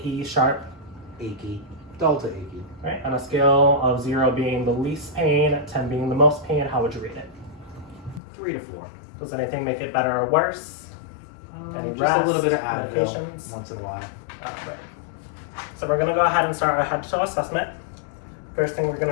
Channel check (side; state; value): right; drops out; at 8.2 s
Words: sharp? Achy. Dull to achy. All right. On a scale of 0 being the least pain, 10 being the most pain, how would you rate it? 3 to 4. Does anything make it better or worse? Any Just rest, a little bit of Advil medications? once in a while. Right. So we're going to go ahead and start our head-to-toe assessment. First thing we're